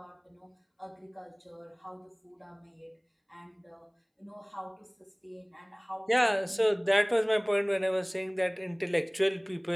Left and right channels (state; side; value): identical; both; correlation 1.00